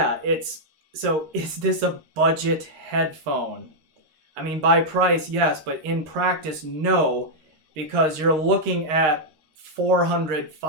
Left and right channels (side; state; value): left; late; 13 ms